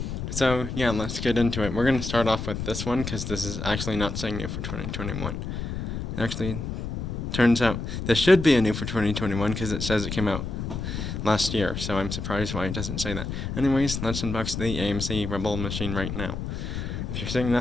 So yeah, let's get into it. We're going to start off with this one because this is actually not saying new for 2021. It actually turns out this should be a new for 2021 because it says it came out last year. So I'm surprised why it doesn't say that. Anyways, let's unbox the AMC Rebel machine right now. If you're seeing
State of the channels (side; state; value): left; noise; rumble, 4 dB below the sound